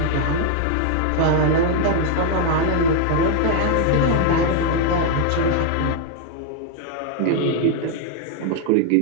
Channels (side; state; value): both; different; correlation 0.00